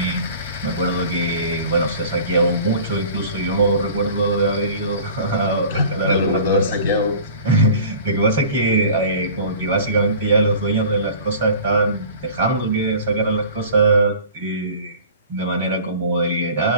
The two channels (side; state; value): both; inverted; correlation -0.43